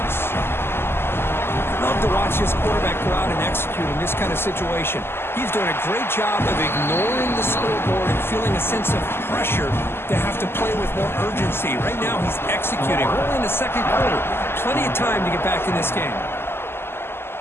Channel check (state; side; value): late; right; 0.12 ms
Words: Love to watch this quarterback go out and execute in this kind of situation. He's doing a great job of ignoring the scoreboard and feeling a sense of pressure to have to play with more urgency. Right now, he's executing. We're in the 2nd quarter. Plenty of time to get back in this game.